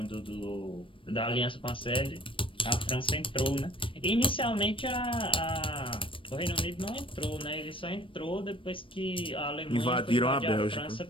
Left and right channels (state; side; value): late; right; 0.25 ms